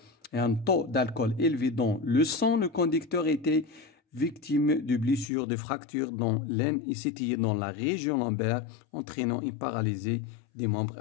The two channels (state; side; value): drops out; right; at 5.3 s